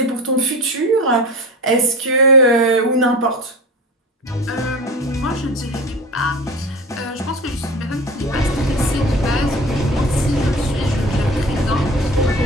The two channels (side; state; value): both; normal; correlation 0.33